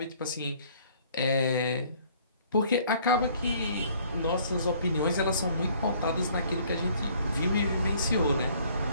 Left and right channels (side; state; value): both; inverted; correlation -0.58